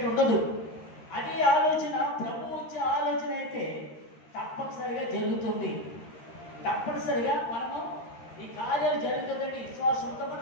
ఉండదు. అదే ఆలోచన ప్రభు వచ్చే ఆలోచన అయితే తప్పనిసరిగా జరుగుతుంది. తప్పనిసరిగా మనము ఈ కార్యాలు జరుగుతుందంటే విశ్వాసంతో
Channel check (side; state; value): right; late; 13 ms